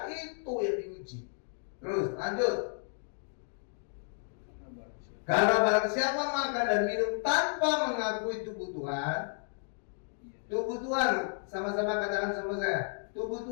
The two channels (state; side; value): silent; right; digital silence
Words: Itu yang diuji. Terus lanjut. Karena barang siapa makan dan minum tanpa mengakui tubuh Tuhan, tubuh Tuhan, sama-sama katakan sama saya, tubuh